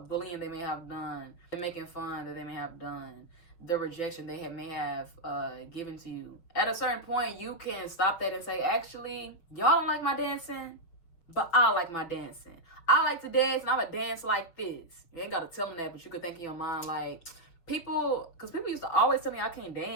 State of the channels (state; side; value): late; right; 6.2 ms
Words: bullying they may have done, the making fun that they may have done, the rejection they may have given to you. At a certain point, you can stop that and say, actually, y'all don't like my dancing, but I like my dancing. I like to dance, and I'm going to dance like this. You ain't got to tell them that, but you could think in your mind, like, because people used to always tell me I can't